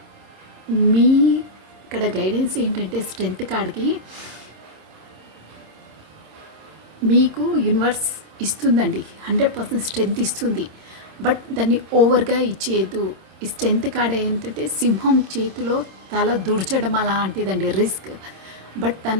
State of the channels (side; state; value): left; late; 26 ms